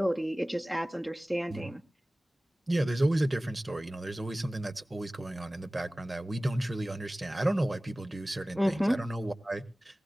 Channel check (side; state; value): both; normal; correlation 0.98